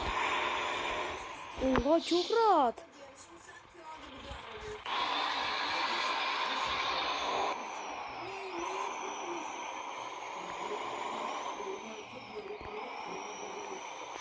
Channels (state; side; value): identical; both; correlation 1.00